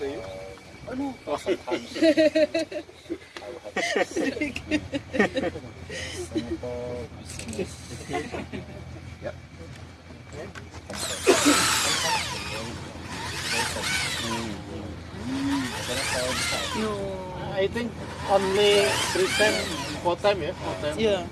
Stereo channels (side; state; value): both; identical; correlation 1.00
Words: I think only 3 times, 4 times, yeah? 4 times. Yeah.